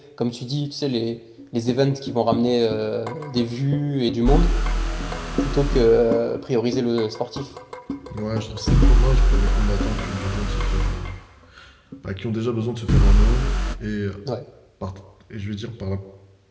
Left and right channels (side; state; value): both; identical; correlation 1.00